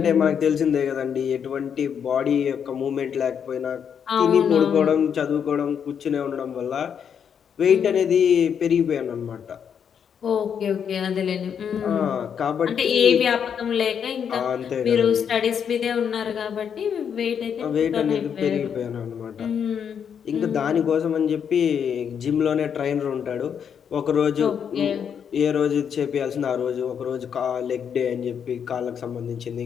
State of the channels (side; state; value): right; quieter; 7.7 dB